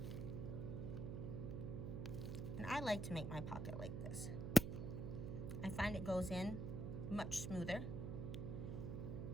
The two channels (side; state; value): right; noise; hum, 3 dB below the sound